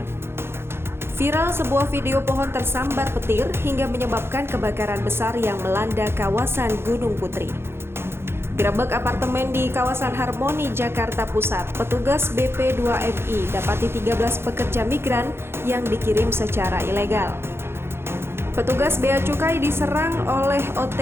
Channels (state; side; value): late; left; 0.12 ms